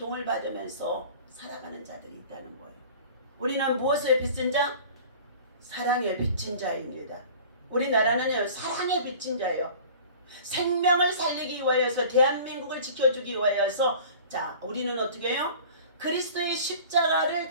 받으면서 살아가는 자들이 있다는 거예요. 우리는 무엇에 빚진 자? 사랑에 빚진 자입니다. 우리나라는 사랑에 빚진 자예요. 생명을 살리기 위하여서 대한민국을 지켜주기 위하여서 자 우리는 어떻게 해요? 그리스도의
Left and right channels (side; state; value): both; inverted; correlation -0.43